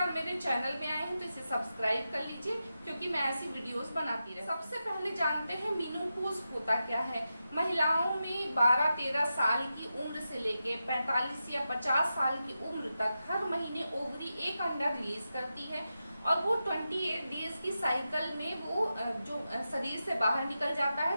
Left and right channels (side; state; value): both; inverted; correlation -0.90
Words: मेरे चैनल में आए हैं तो इसे सब्सक्राइब कर लीजिए, क्योंकि मैं ऐसी वीडियोस बनाती रहती हूँ। सबसे पहले जानते हैं मेनोपॉज होता क्या है। महिलाओं में 12-13 साल की उम्र से लेके 45 या 50 साल की उम्र तक हर महीने ओवरी एक अंडा रिलीज करती है और वो 28 डेज की साइकिल में वो जो शरीर से बाहर निकल जाता